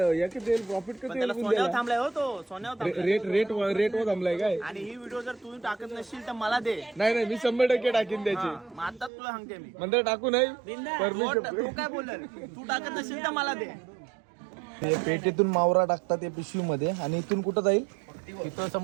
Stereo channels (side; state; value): left; drops out; at 9.1 s